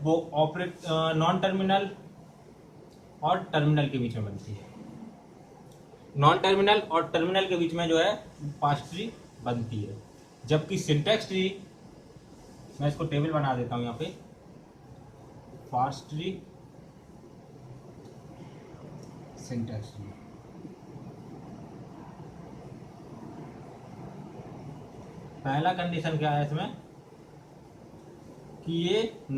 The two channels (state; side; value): identical; both; correlation 1.00